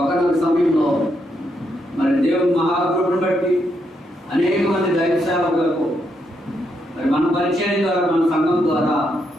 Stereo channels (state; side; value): normal; both; correlation 0.79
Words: సమయంలో మరి దేవుని మహాకృపను బట్టి అనేక మంది దైవ సేవకులకు మరి మన పరిచయం ద్వారా, మన సంఘం ద్వారా